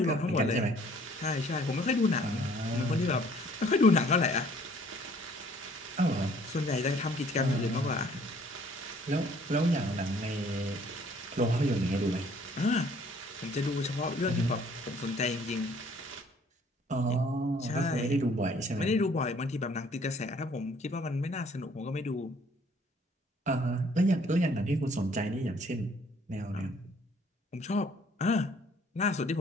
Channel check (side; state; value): both; normal; correlation 0.58